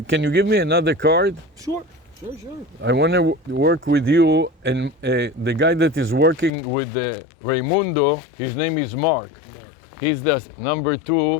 Can you give me another card? Sure. I want to work with you, and the guy that is working with Raimundo, his name is Mark. Mark. He's the number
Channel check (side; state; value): right; drops out; at 6.5 s